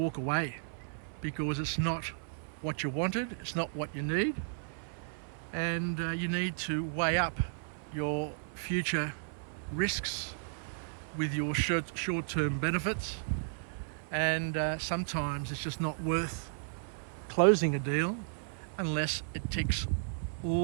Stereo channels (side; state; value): left; silent; 55 dB below the other